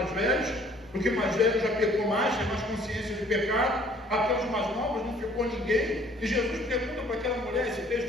velhos, porque mais velho já pecou mais, tem mais consciência de pecado. Até os mais novos não ficou ninguém. E Jesus pergunta para aquela mulher, esse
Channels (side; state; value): both; normal; correlation 0.58